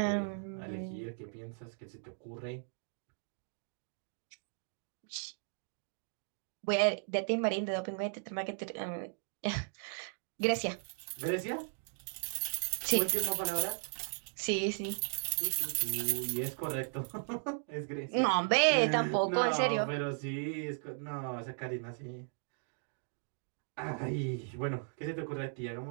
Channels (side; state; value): left; silent; 53 dB below the other